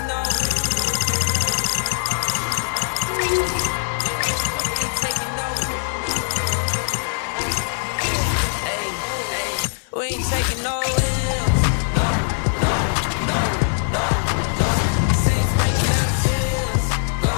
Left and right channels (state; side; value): silent; right; digital silence